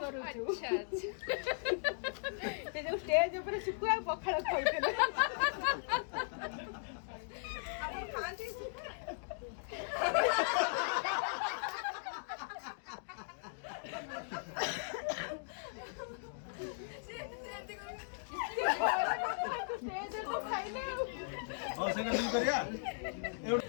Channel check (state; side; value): silent; right; digital silence